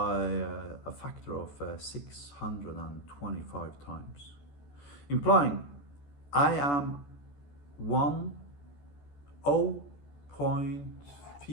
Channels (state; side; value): late; right; 14 ms